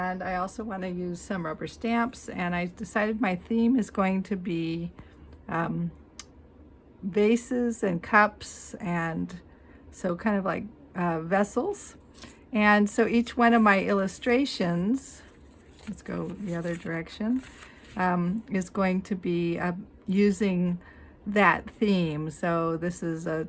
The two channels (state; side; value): identical; both; correlation 1.00